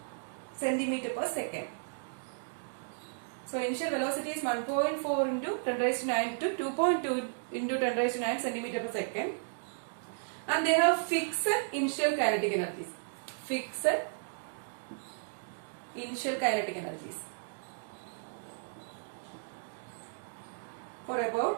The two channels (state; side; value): silent; left; digital silence